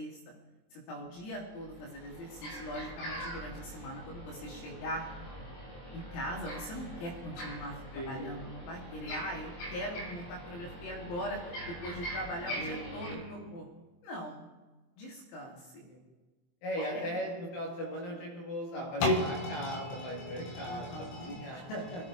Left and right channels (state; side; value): late; right; 23 ms